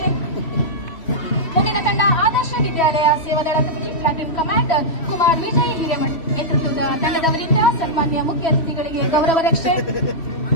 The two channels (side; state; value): right; late; 3.1 ms